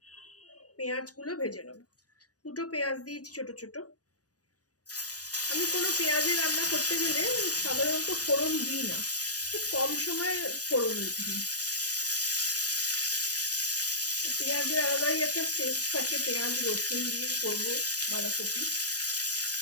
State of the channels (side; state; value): right; late; 0.68 ms